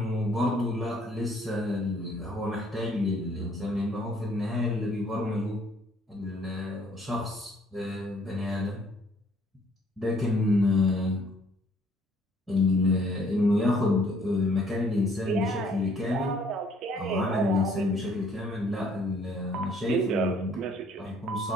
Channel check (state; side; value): normal; both; correlation 0.62